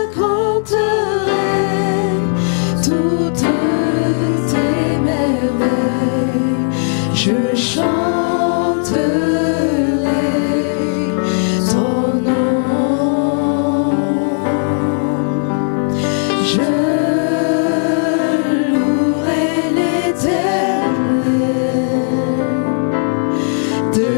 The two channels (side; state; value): right; silent; digital silence